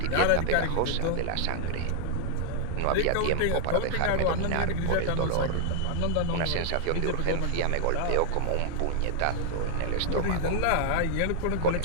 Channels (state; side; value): different; both; correlation -0.01